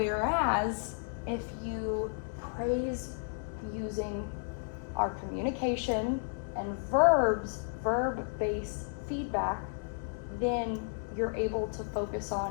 if you praise using our communication and verb-based feedback, then you're able to focus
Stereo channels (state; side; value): silent; right; digital silence